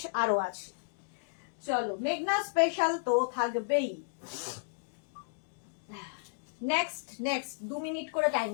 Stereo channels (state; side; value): silent; right; digital silence